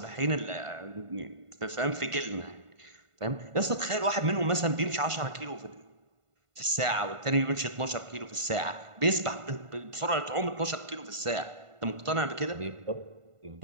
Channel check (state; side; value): late; left; 1.5 ms